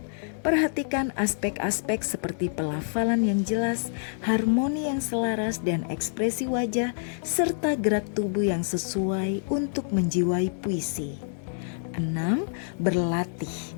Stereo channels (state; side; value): silent; right; digital silence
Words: Perhatikan aspek-aspek seperti pelafalan yang jelas, harmoni yang selaras, dan ekspresi wajah, serta gerak tubuh yang sesuai untuk menjiwai puisi. 6. Berlatih.